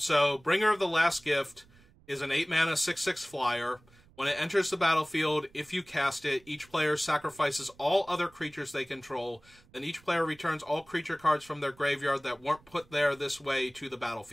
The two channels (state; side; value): noise; right; rumble, 28 dB below the sound